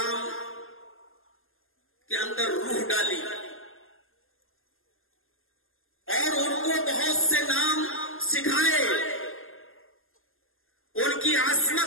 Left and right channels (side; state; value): right; late; 0.60 ms